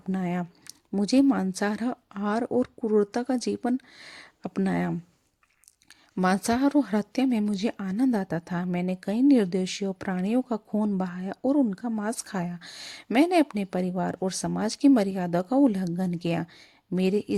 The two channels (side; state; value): both; identical; correlation 1.00